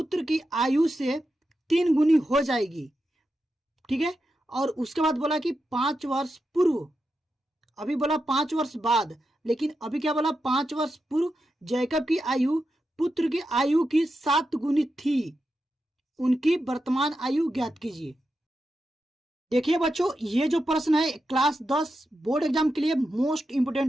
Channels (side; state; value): both; normal; correlation 0.88